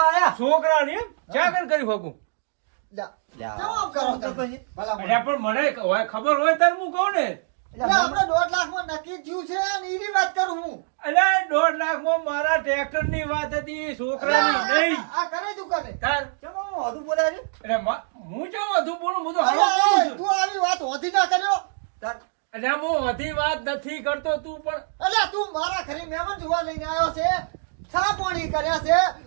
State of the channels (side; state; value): left; silent; digital silence